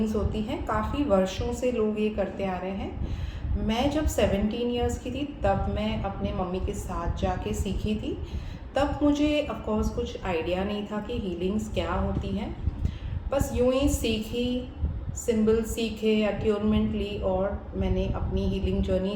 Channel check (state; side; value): identical; both; correlation 1.00